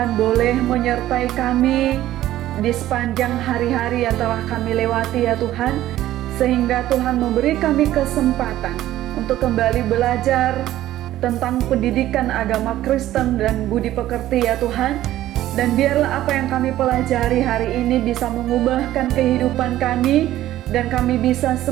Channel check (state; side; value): quieter; left; 14.0 dB